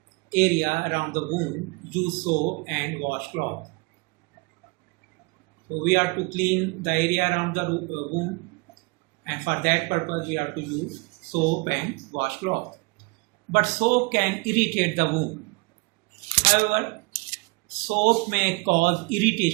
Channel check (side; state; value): left; quieter; 27.2 dB